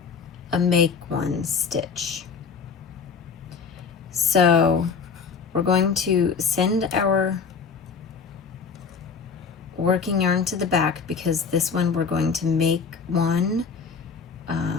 a make one stitch. So we're going to send our working yarn to the back because this one we're going to make one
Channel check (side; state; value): right; quieter; 5.7 dB